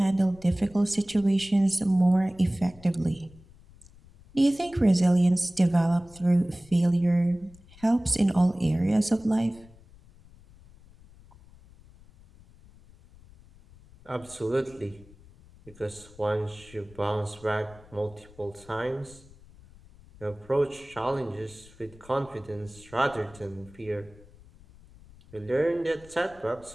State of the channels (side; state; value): left; noise; rumble, 24 dB below the sound